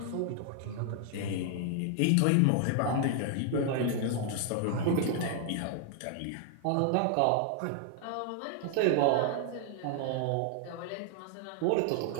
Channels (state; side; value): different; both; correlation 0.00